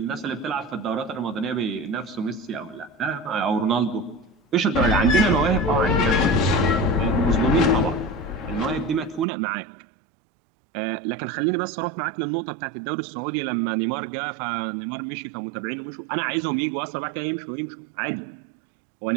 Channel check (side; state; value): left; drops out; at 9.2 s